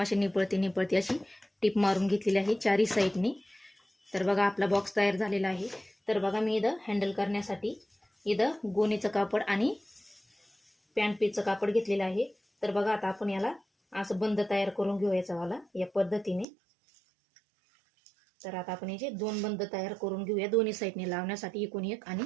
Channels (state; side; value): drops out; left; at 16.4 s